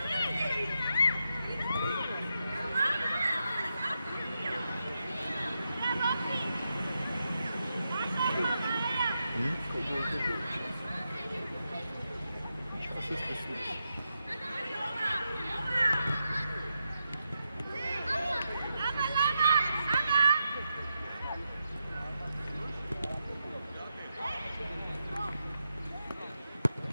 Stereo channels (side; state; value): both; inverted; correlation -0.86